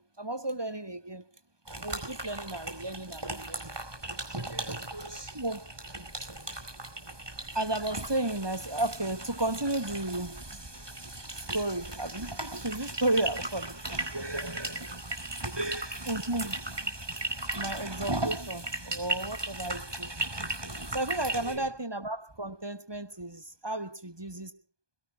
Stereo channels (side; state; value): left; late; 1.2 ms